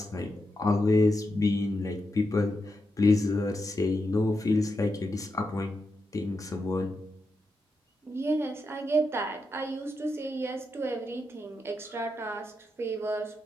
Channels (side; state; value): both; normal; correlation 0.86